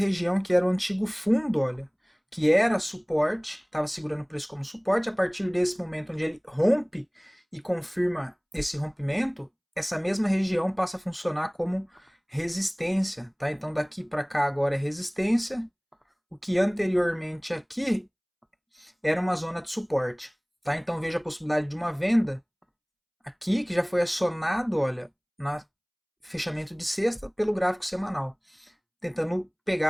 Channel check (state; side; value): identical; both; correlation 1.00